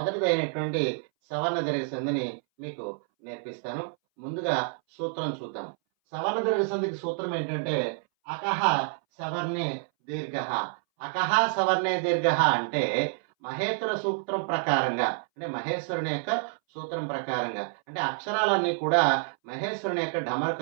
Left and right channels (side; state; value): left; silent; 59 dB below the other